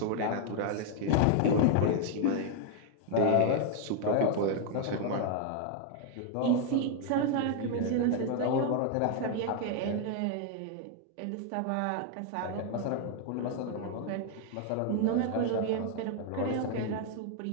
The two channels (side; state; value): both; different; correlation 0.00